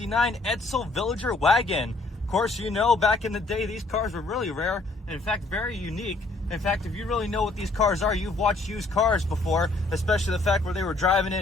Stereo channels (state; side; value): quieter; right; 3.2 dB